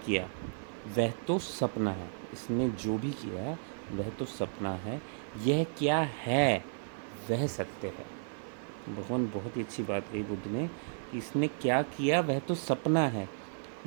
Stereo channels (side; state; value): left; silent; 55 dB below the other